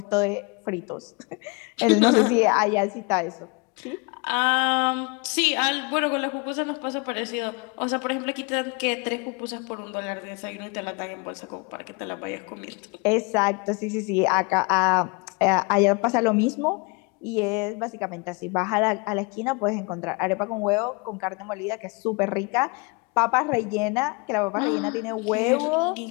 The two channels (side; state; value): right; quieter; 30.0 dB